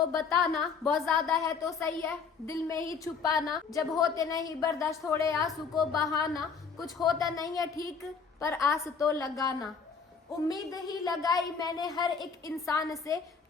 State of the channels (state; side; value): quieter; right; 5.7 dB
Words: बताना, बहुत ज्यादा है तो सही है दिल में ही छुपाना, जब होते नहीं बर्दाश्त थोड़े आंसू को बहाना, कुछ होता नहीं है ठीक पर आस तो लगाना, उम्मीद ही लगाई मैंने हर एक इंसान से,